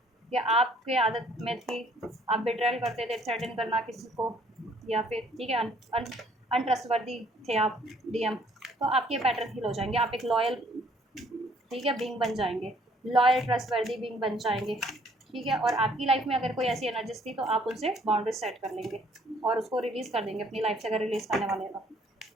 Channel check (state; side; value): normal; both; correlation 0.62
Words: या आपके आदत में थी आप बिट्रायल करते थे, थ्रेटन करना किसी को, या फिर ठीक है अनट्रस्टवर्दी थे आप, डीएम, तो आपके पैटर्न हील हो जाएंगे। आप एक लॉयल, ठीक है, बीइंग बन जाएंगे, लॉयल ट्रस्टवर्दी बीइंग बन जाएंगे। ठीक है, और आपकी लाइफ में अगर कोई ऐसी एनर्जीज थी तो आप उनसे बाउंड्रीज सेट कर लेंगे और उसको रिलीज़ कर देंगे अपनी लाइफ से, अगर रिलीज़ करने वाले हैं